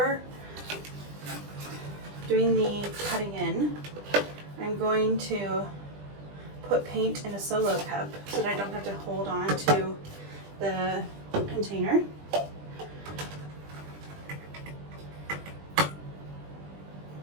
doing the cutting in, I'm going to put paint in a solo cup so that I don't have to hold on to the container.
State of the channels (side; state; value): left; late; 20 ms